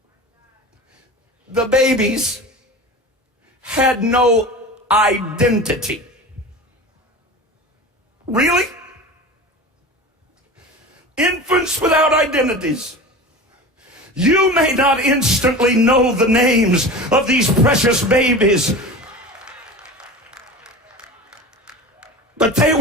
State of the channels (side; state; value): both; normal; correlation 0.33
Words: the babies had no identity. Really? Infants without identities. You may not instantly know the names of these precious babies, but they